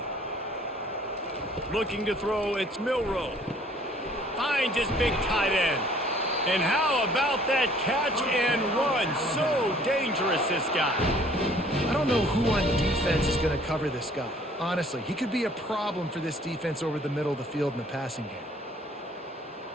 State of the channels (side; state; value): both; normal; correlation 0.57